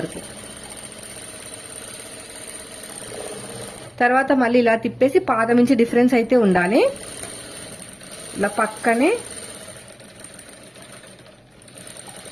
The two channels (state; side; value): identical; both; correlation 1.00